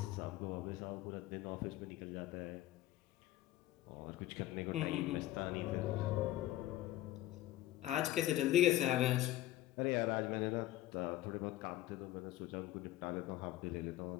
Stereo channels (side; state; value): right; quieter; 14.9 dB